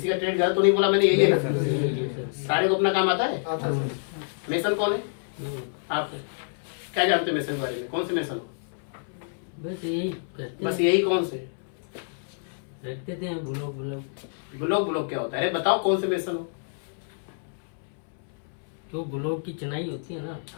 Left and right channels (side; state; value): right; silent; 60 dB below the other